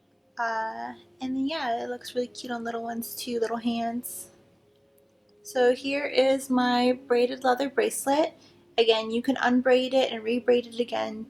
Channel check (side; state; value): both; identical; correlation 1.00